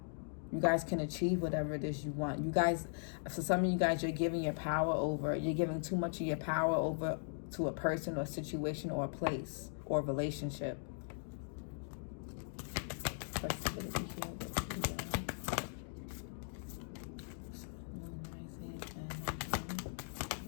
You guys can achieve whatever it is you want. You guys, for some of you guys, you're giving your power over. You're giving too much of your power over to a person or situation or a place or a relationship. Flexibility here.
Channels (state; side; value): silent; right; digital silence